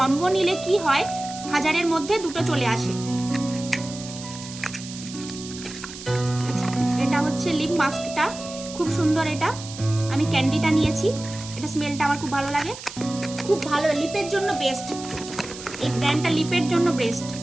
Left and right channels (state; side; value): noise; right; hiss, 13 dB below the sound